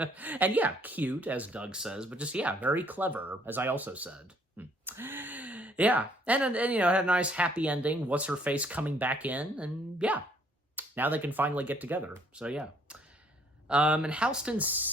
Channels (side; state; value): both; normal; correlation 0.64